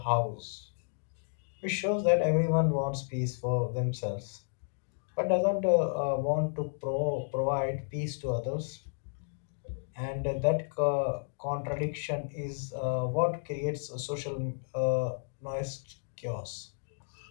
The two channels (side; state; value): right; silent; digital silence